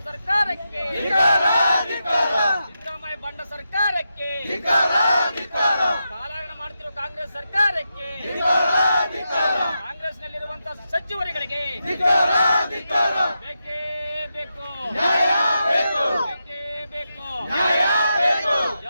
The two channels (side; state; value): both; inverted; correlation -0.87